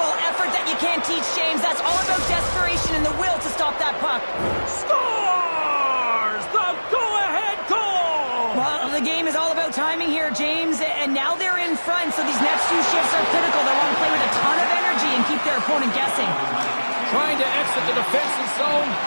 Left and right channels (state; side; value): inverted; both; correlation -1.00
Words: effort that you can't teach, James. That's all about desperation and the will to stop that puck. Scores the go-ahead goal! Well, the game is all about timing here, James, and now they're in front, so these next two shifts are critical. They want to play with a ton of energy and keep their opponent guessing. Trying to exit the defensive zone.